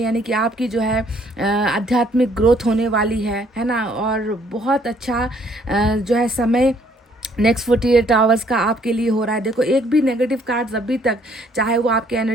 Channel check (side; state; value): both; normal; correlation 0.64